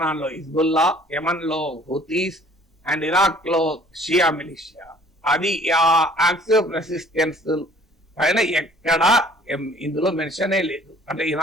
లో హిజ్బుల్లా, యమన్ లో హూతీస్ అండ్ ఇరాక్ లో షియా మిలిషియా. అది ఆ యాక్సిస్ ఆఫ్ రెసిస్టెన్స్ పైన ఎక్కడా ఇందులో మెన్షనే లేదు. అంటే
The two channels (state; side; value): normal; both; correlation 0.54